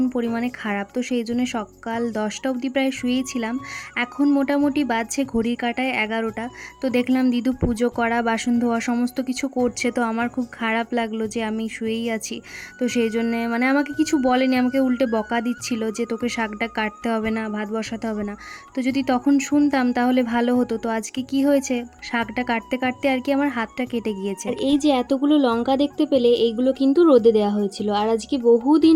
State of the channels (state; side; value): identical; both; correlation 1.00